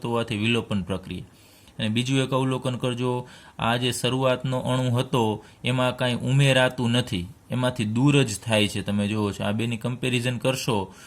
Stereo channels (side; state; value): both; identical; correlation 1.00